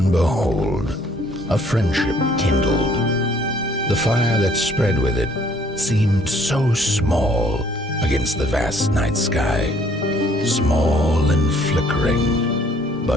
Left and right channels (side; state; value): both; normal; correlation 0.61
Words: behold, a friendship kindled. The fire that spread with it seemed so small against the vast night sky, small and flickering,